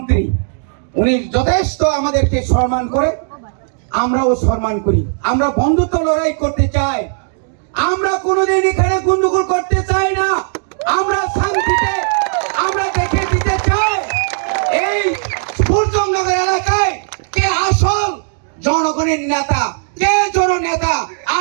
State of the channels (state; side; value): silent; left; digital silence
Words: উনি যথেষ্ট আমাদেরকে সম্মান করে আমরাও সম্মান করি আমরা বন্ধুত্ব লড়াই করতে চাই আমরা কোনোদিন এখানে গন্ডগোল করতে চাই না আমরা শান্তিতে আমরা দেখে দিতে চাই এই সূর্যনগর এলাকায় কে আসল জনগণের নেতা কে জননেতা